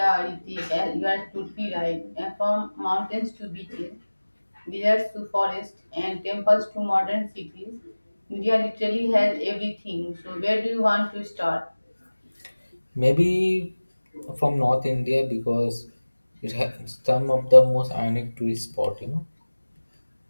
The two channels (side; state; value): both; inverted; correlation -1.00